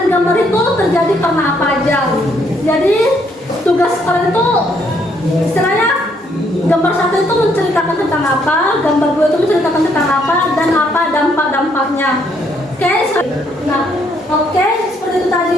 gambar itu terjadi karena apa aja. Jadi tugas kalian itu istilahnya gambar 1 itu menceritakan tentang apa, gambar 2 itu menceritakan tentang apa, dan apa dampak-dampaknya. Oke, seperti itu tadi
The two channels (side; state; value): both; normal; correlation 0.70